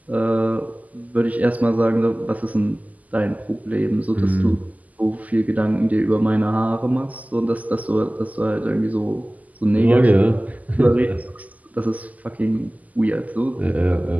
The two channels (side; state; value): left; late; 0.077 ms